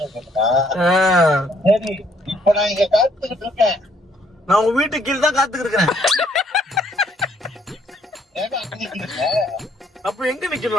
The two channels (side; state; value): both; normal; correlation 0.66